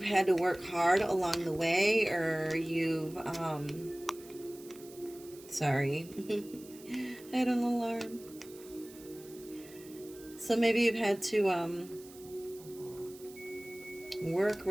had to work hard along the way, or you've sorry. I had an alarm. So maybe you've had to work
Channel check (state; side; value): noise; right; hiss, 20 dB below the sound